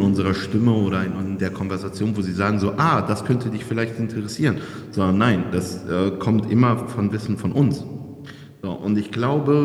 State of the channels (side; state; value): both; identical; correlation 1.00